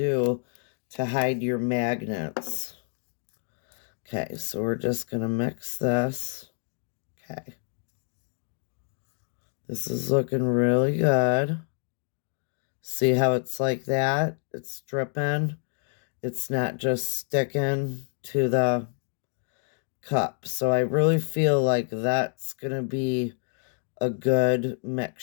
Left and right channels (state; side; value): silent; right; digital silence